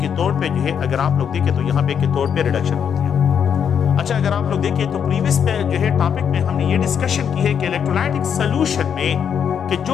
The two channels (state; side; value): quieter; right; 7.8 dB